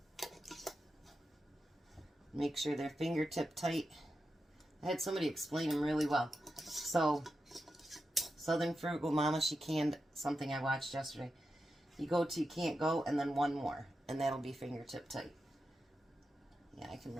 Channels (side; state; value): both; normal; correlation 0.89